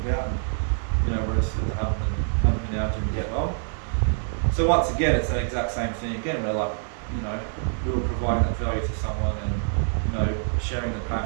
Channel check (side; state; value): left; silent; 59 dB below the other